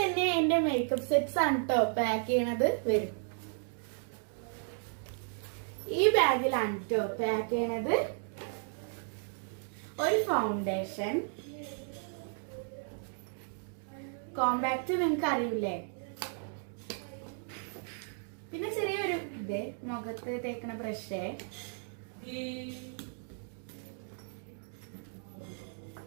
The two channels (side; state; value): left; silent; 55 dB below the other